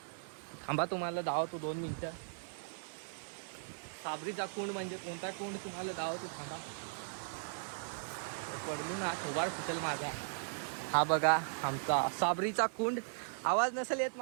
थांबा तुम्हाला दावतो 2 मिनिटं. साबरीचा कुंड म्हणजे कोणता कुंड तुम्हाला दावतो, थांबा. पडलो ना थोबाड फुटेल माझा. हा बघा आमचा साबरीचा कुंड. आवाज नसेल येत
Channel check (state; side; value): silent; left; 53 dB below the other